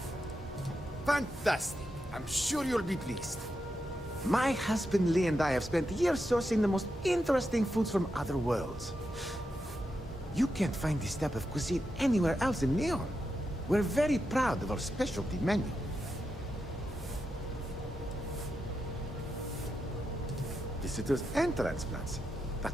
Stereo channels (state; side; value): normal; both; correlation 0.86